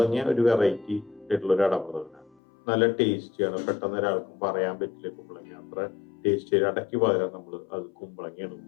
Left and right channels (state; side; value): drops out; right; at 2.4 s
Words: ഒരു വെറൈറ്റി ആയിട്ടുള്ള ഒരു അടപ്രഥമനാണ്. നല്ല ടേസ്റ്റിയാണ്. പെട്ടെന്ന് ഒരാൾക്കും പറയാൻ പറ്റില്ല കുമ്പളങ്ങ അത്ര ടേസ്റ്റ്. അടയ്ക്ക് പകരം നമ്മൾ അത് കുമ്പളങ്ങയാണ്